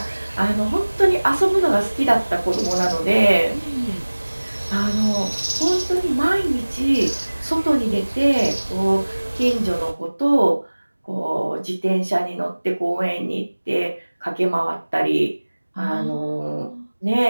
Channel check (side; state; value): both; inverted; correlation -1.00